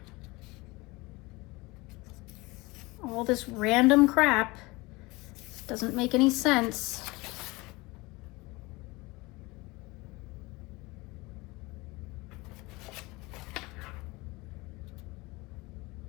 All this random crap doesn't make any sense.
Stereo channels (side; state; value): right; quieter; 23.2 dB